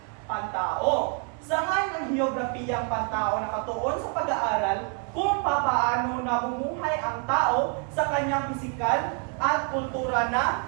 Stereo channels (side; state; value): left; quieter; 37.3 dB